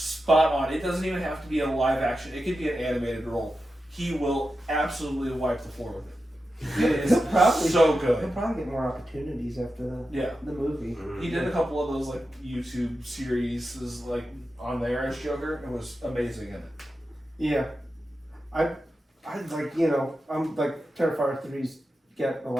on. It doesn't even have to be a live action. It could be an animated role. He will absolutely wipe the floor with it. It is Probably. so He'll good. probably get more opportunities after Yeah. the movie. He did a couple of those like YouTube series like on there as Joker. It was amazing in it. Yeah, I like, you know, I'm like Terrifier 3's get a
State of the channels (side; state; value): both; normal; correlation 0.91